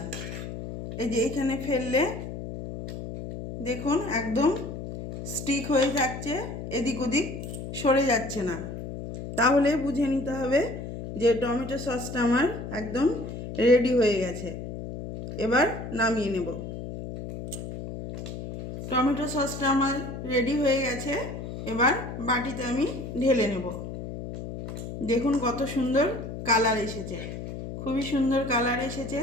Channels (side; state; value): left; noise; hum, 8 dB below the sound